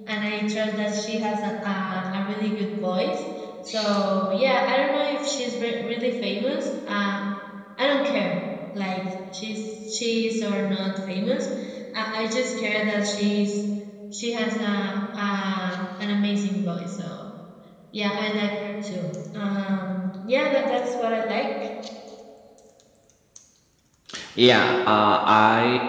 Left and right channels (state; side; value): identical; both; correlation 1.00